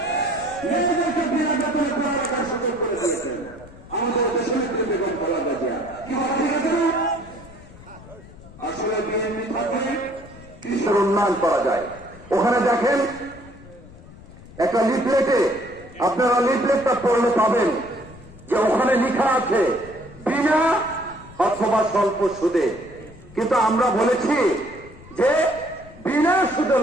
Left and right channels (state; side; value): noise; left; rumble, 19 dB below the sound